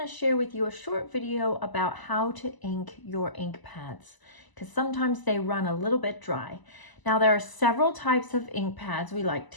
share with you a short video about how to ink your ink pads, because sometimes they run a little bit dry. Now there are several types of ink pads we like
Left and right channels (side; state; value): right; late; 1.0 ms